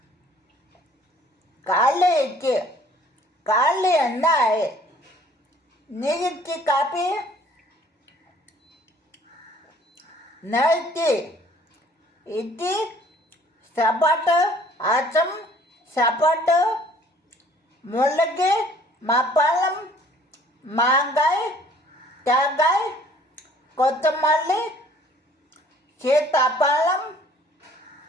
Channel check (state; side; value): normal; both; correlation 0.56